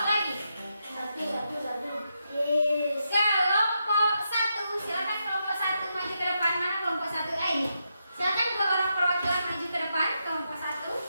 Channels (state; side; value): inverted; both; correlation -0.83